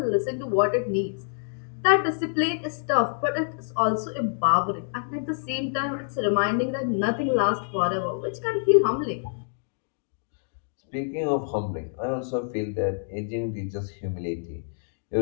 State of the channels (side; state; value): right; silent; digital silence